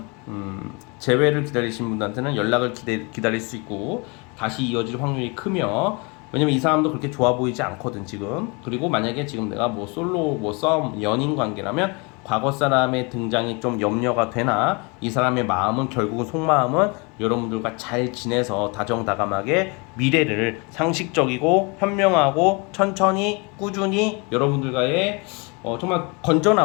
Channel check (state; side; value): quieter; right; 30.2 dB